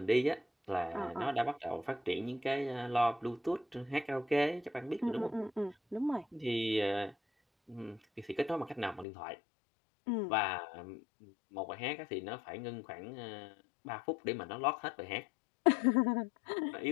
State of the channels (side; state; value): right; drops out; at 9.1 s